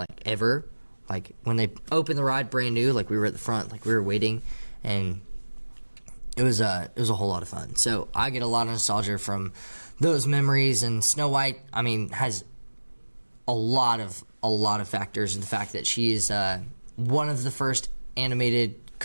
ever. Like when they opened the ride brand new, like we were at the front, like we were waiting, and it was a whole lot of fun. So I get a lot of nostalgia from those memories. And Snow White, has a lot of factors. The fact that she is one of the first animated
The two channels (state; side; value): inverted; both; correlation -1.00